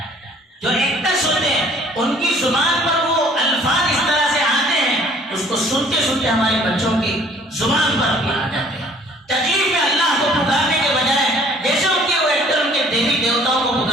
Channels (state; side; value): normal; both; correlation 0.55